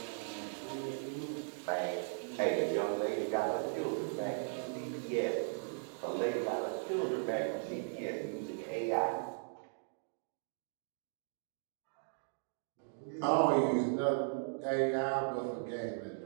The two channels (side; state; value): left; silent; digital silence